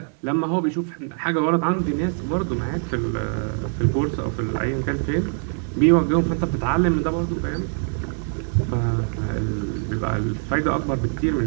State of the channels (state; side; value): silent; left; 58 dB below the other